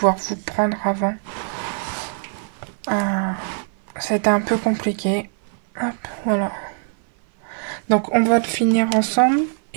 vous prendre avant. Euh, C'était un peu compliqué. Hop, voilà. Donc, on va le finir ensemble.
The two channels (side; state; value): left; silent; 58 dB below the other